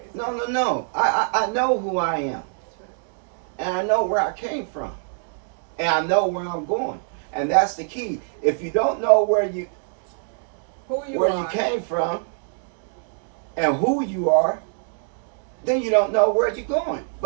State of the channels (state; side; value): silent; left; digital silence